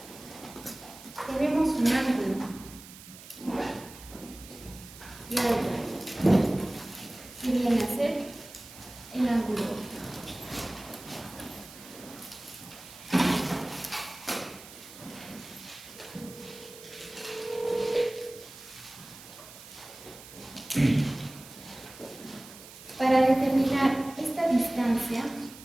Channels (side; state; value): right; noise; hiss, 17 dB below the sound